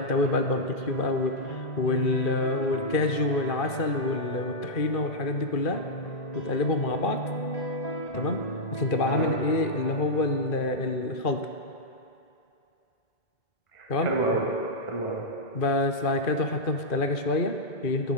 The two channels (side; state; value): right; late; 2.4 ms